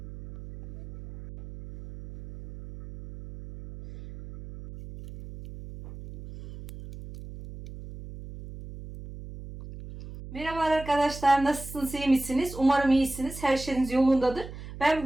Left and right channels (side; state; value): right; noise; hum, 14 dB below the sound